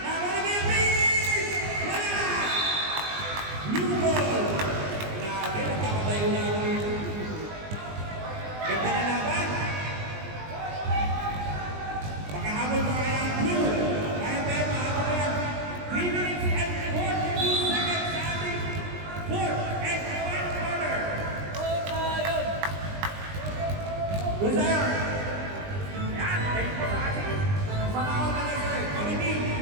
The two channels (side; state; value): left; late; 20 ms